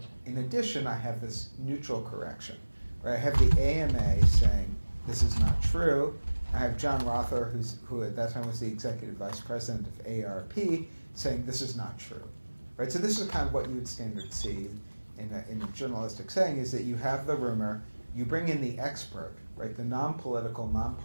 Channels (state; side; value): inverted; both; correlation -1.00